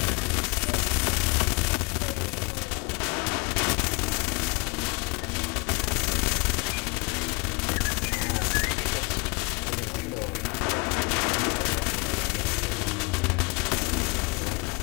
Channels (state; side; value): quieter; right; 28.3 dB